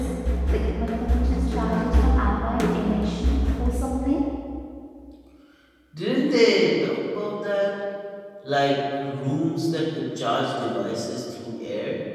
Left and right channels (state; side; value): identical; both; correlation 1.00